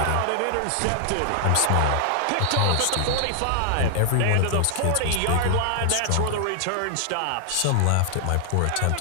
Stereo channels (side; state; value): both; different; correlation 0.00